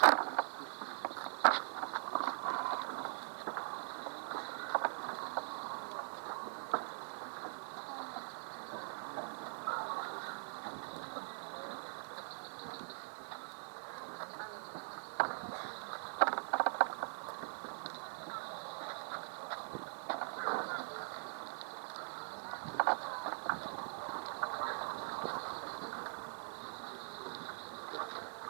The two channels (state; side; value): silent; left; digital silence